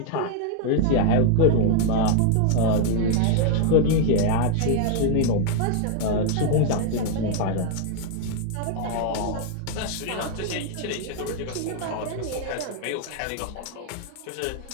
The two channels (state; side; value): different; both; correlation 0.00